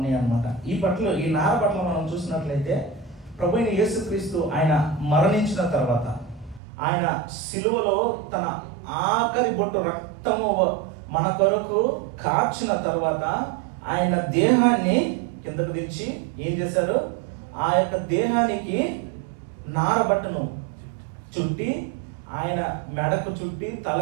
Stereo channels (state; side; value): drops out; left; at 6.6 s